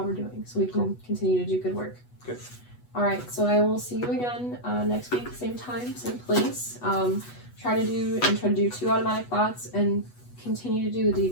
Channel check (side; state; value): right; late; 8.2 ms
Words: we're doing so we can continue to do good work. Good. All right, so I will see you again next week, same time, same place. Try to do 2 automatic thoughts, and continue to do the